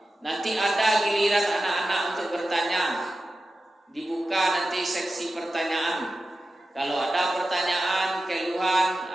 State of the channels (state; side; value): normal; both; correlation 0.93